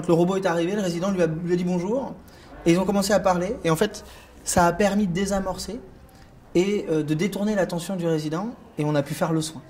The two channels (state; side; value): identical; both; correlation 1.00